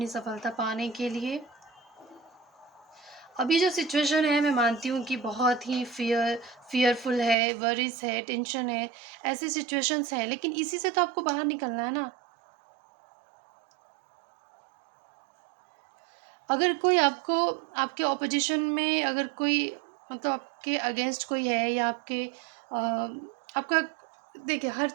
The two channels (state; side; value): drops out; left; at 7.4 s